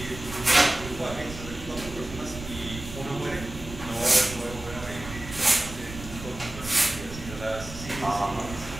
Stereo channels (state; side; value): noise; right; rumble, 12 dB below the sound